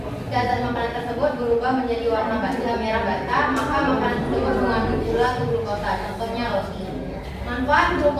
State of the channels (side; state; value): both; identical; correlation 1.00